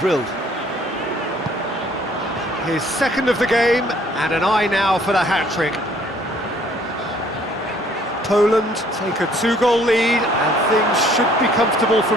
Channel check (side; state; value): both; normal; correlation 0.60